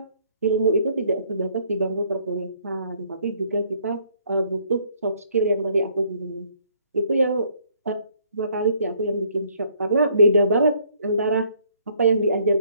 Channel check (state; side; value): inverted; both; correlation -0.65